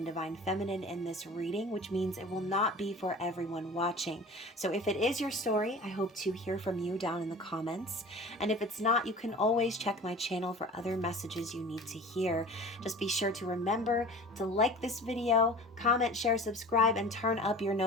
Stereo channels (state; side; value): normal; both; correlation 0.39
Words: Divine Feminine in this reading, which means it will not be for everyone watching. So if it is your story, I hope to hear from you down in the comments. And if it's not, you can always check my channel for other messages you need to hear. Just be sure to remember to like this video, comment, share, subscribe, and turn up your